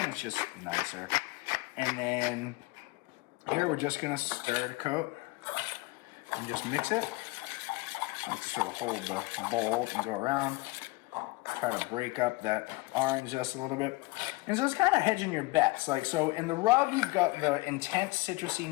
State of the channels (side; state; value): right; quieter; 22.9 dB